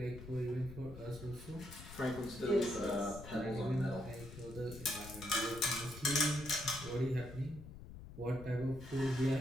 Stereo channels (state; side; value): noise; left; rumble, 13 dB below the sound